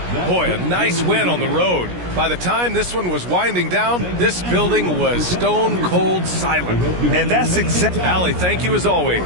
Boy, a nice win on the road. By the time this one was winding down, this building was stone cold silent. And that's exactly... Allie, thank you as always.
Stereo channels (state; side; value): late; left; 17 ms